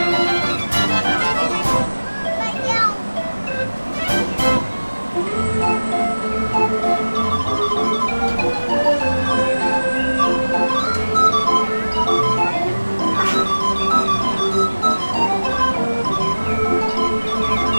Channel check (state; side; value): inverted; both; correlation -1.00